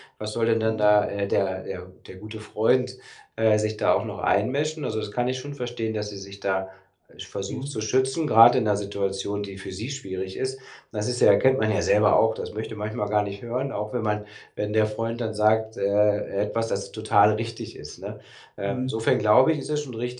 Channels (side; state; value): both; identical; correlation 1.00